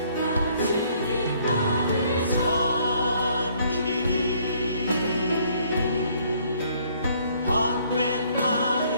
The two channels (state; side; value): inverted; both; correlation -0.64